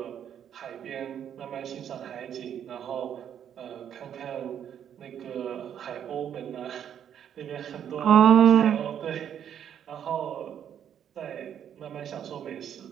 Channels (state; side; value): quieter; left; 9.2 dB